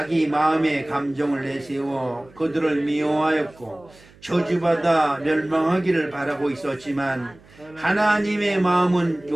마음의 감정을 내세워 그들을 미워하였고 저주받아 멸망하기를 바라고 있었지만 하나님의 마음은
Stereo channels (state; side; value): noise; right; hum, 26 dB below the sound